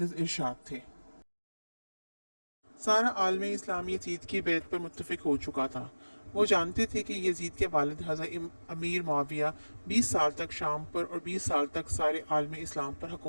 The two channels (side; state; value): both; inverted; correlation -1.00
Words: इरशाद थे। सारा आलम इस्लाम यजीद की बैत पर मुत्तफ़िक हो चुका था। वो जानते थे कि यजीद के वालिद हज़रत अमीर मुआविया 20 साल तक शाम पर और 20 साल तक सारे आलम इस्लाम पर